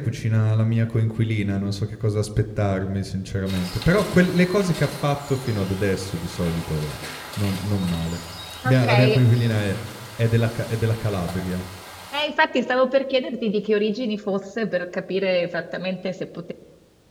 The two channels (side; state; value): both; identical; correlation 1.00